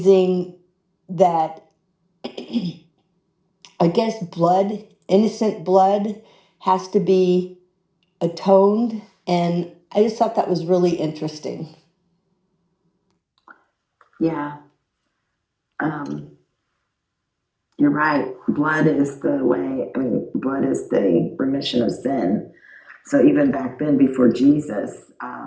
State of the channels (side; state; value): both; identical; correlation 1.00